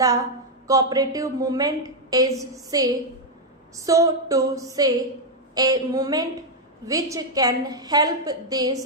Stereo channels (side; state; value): both; normal; correlation 0.00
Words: cooperative movement is, so to say, a movement which can help